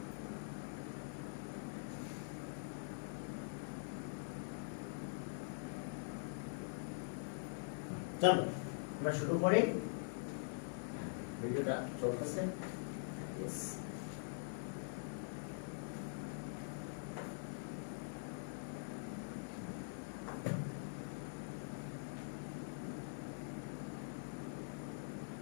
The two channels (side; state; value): right; silent; digital silence